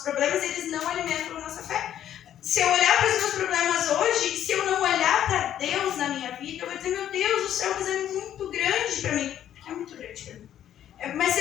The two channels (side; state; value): right; quieter; 10.8 dB